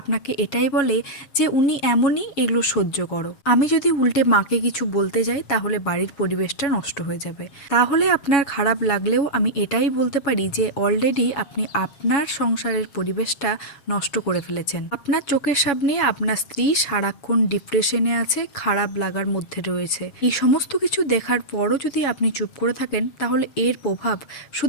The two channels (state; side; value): late; right; 7.2 ms